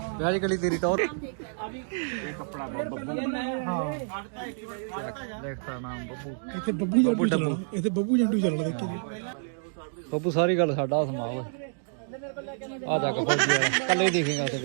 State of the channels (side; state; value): left; silent; digital silence